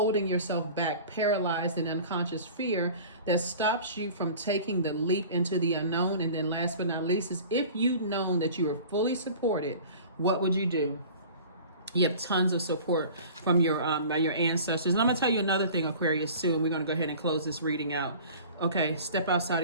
yourself back, paralyzed in unconscious fear that stops you from taking the leap into the unknown? And then last but not least is, if you'd known that you were fully supported, what would you do? You have tons of support from your by your ancestors. And I'm going to tell you another thing, Aquarius, soon. We're going to go ahead and close this reading out. Okay, step outside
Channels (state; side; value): inverted; both; correlation -0.42